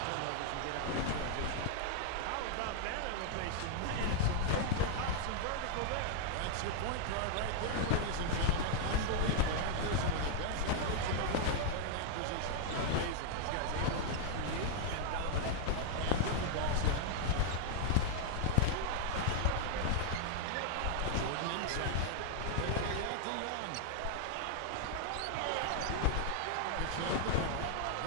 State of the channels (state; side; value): different; both; correlation -0.01